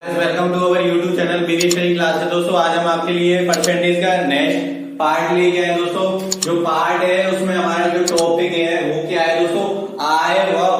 Welcome to our YouTube channel BD study class है। दोस्तों आज हम आपके लिए परसेंटेज का नेक्स्ट पार्ट लेके आए। दोस्तों जो पार्ट है उसमें हमारा जो टॉपिक है वो क्या है दोस्तों, आय व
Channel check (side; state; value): both; identical; correlation 1.00